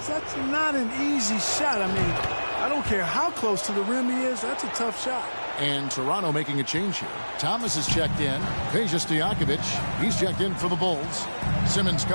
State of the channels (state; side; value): inverted; both; correlation -1.00